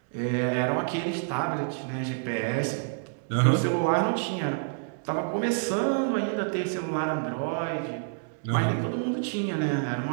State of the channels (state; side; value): silent; left; 59 dB below the other